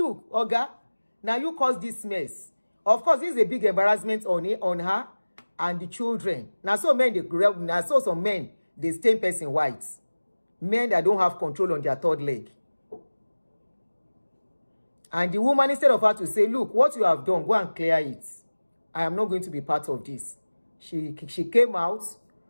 Oga, now you caused this mess. Of course, this is a big embarrassment on her and the children. Now some men, they stain person white. Men that don't have control on their third leg. And the woman, instead of her to say, look, what you have done, go and clear it. I am not going to be part of this. She came out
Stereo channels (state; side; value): inverted; both; correlation -1.00